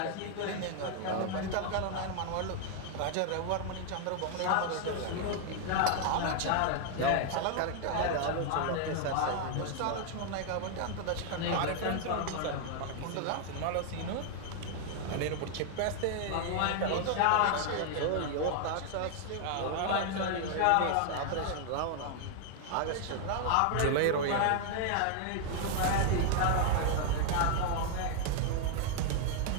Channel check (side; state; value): both; different; correlation 0.00